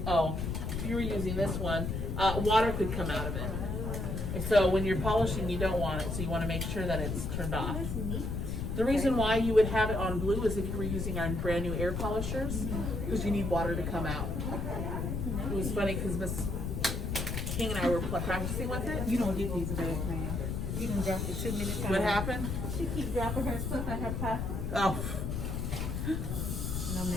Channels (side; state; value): left; noise; rumble, 2 dB below the sound